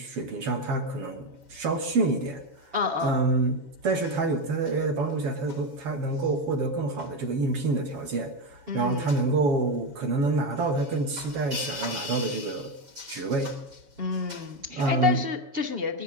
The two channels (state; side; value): late; left; 7.2 ms